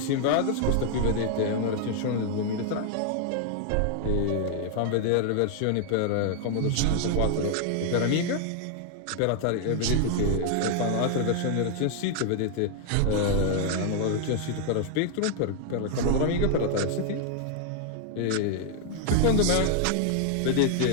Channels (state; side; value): different; both; correlation 0.00